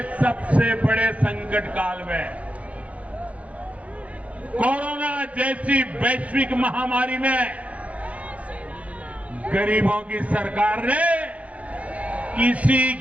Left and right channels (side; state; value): left; late; 0.066 ms